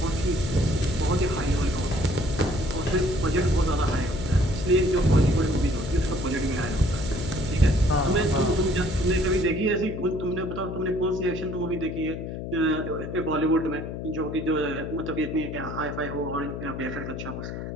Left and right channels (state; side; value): noise; left; hum, 6 dB below the sound